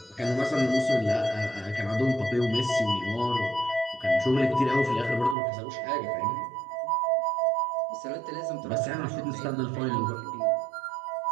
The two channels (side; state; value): left; drops out; at 5.4 s